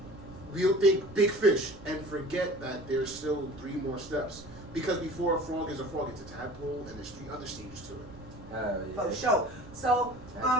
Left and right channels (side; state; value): right; noise; rumble, 18 dB below the sound